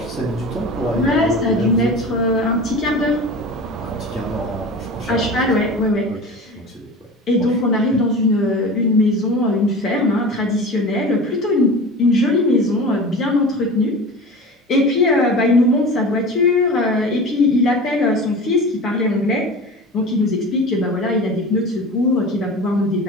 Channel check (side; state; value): both; normal; correlation 0.34